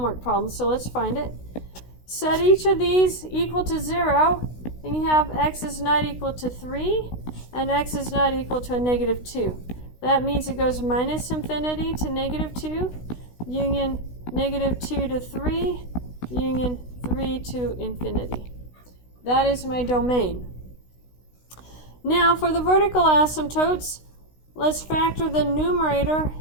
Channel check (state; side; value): late; right; 16 ms